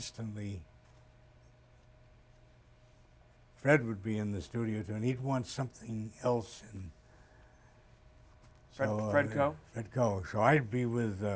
Fred would be in the studio too, and he'd want something else, and so Fredco. So I'd be with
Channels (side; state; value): both; identical; correlation 1.00